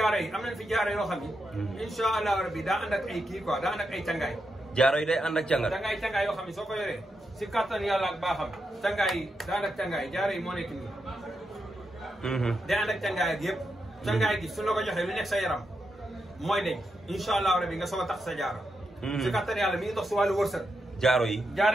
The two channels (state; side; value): normal; both; correlation 0.85